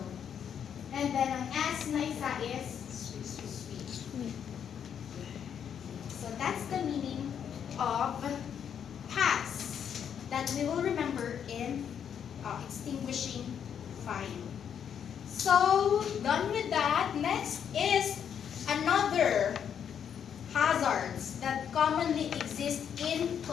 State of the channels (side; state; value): right; quieter; 8.3 dB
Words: And then ang S na isa is sweep. So that's the meaning of pass that we will remember in extinguishing fire. So, done with that. Next is another hazards that commonly exist in